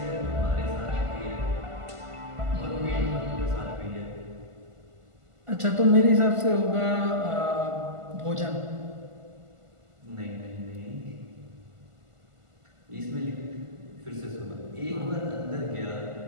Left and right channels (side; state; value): left; late; 1.5 ms